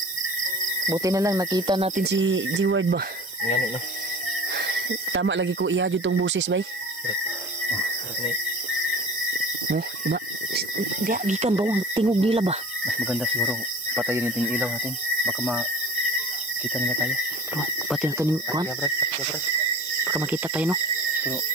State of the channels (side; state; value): both; normal; correlation 0.40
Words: Buti na lang nakita natin si G-Ward ba? Ngayon, no? Tama lagi ko ihadyo tong busis, bay. Oh, diba? Di gikan ba ang tingog nila ba? Mas maganda siguro patayin natin yung ilaw natin. Baka makita nila tayo. Oh, pati na ito kuhan. Baka makita tayo, no? Pero